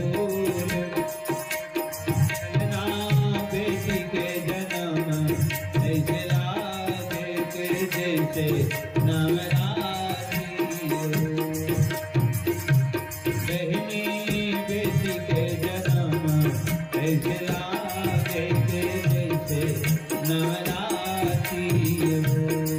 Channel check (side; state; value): both; identical; correlation 1.00